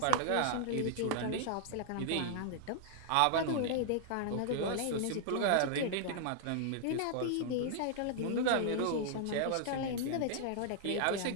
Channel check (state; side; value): different; both; correlation -0.01